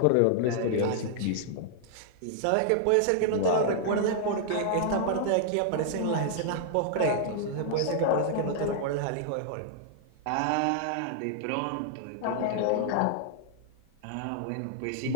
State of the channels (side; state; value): both; different; correlation -0.01